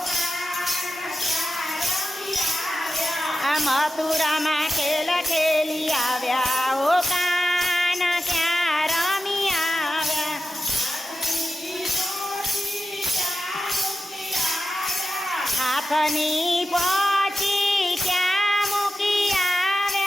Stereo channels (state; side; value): normal; both; correlation 0.92